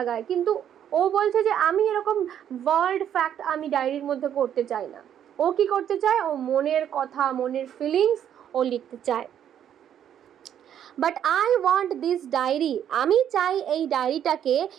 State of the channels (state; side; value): quieter; left; 9.8 dB